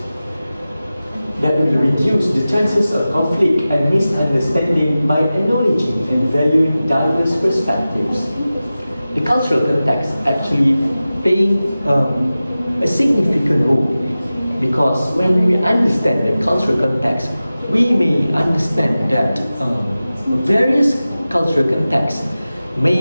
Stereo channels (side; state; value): both; inverted; correlation -0.95